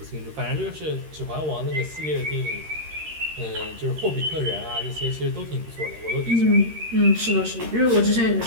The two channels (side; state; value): left; late; 13 ms